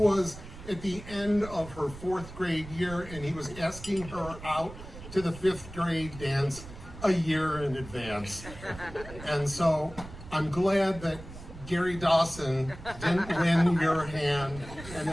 at the end of her 4th grade year, and he was asking her out to the 5th grade dance a year in advance. And so I'm glad that Gary Dawson didn't win your hand, and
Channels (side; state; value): right; noise; rumble, 14 dB below the sound